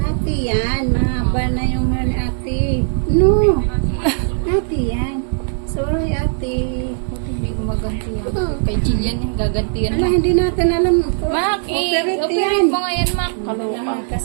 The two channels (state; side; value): silent; left; digital silence